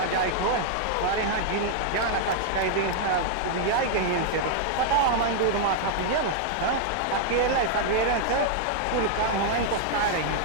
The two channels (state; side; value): different; both; correlation -0.01